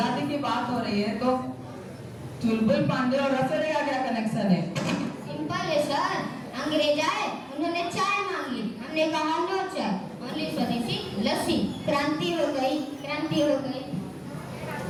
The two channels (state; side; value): identical; both; correlation 1.00